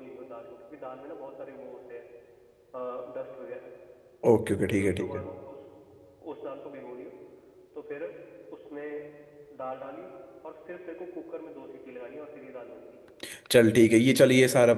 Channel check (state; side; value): identical; both; correlation 1.00